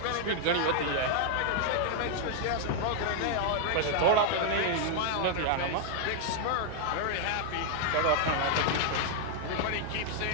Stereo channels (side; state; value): both; different; correlation 0.00